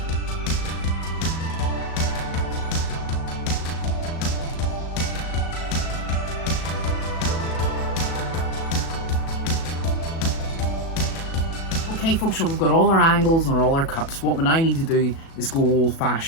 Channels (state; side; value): late; right; 37 ms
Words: Okay folks, so we've got all our angles and all our cuts. What we now need to do is go old